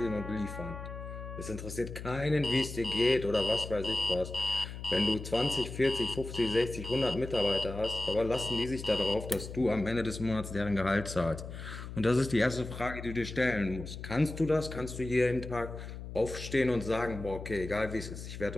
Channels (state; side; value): noise; left; hum, 10 dB below the sound